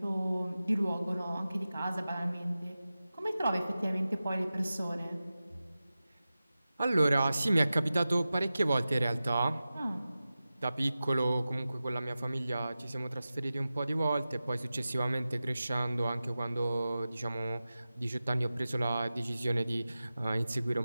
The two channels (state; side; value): inverted; both; correlation -0.94